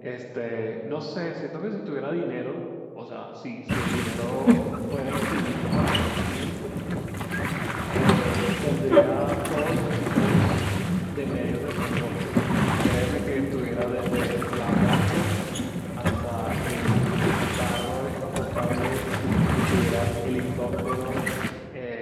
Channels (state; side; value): identical; both; correlation 1.00